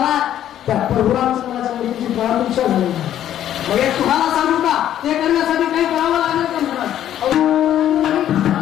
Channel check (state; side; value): quieter; right; 11.3 dB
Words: त्या प्रभू रामचंद्राच्या मुलीची प्राणभिक्षा झाली. मग एक तुम्हाला सांगू का, ते करण्यासाठी काही करावं लागेल का महाराज?